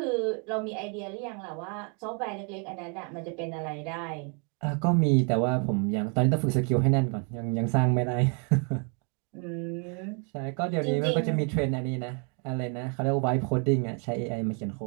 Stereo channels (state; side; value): quieter; left; 37.2 dB